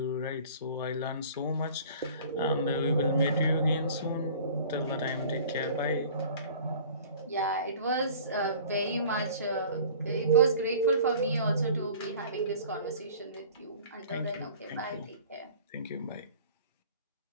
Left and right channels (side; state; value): both; inverted; correlation -0.46